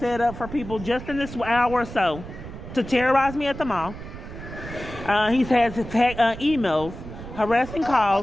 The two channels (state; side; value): noise; right; rumble, 12 dB below the sound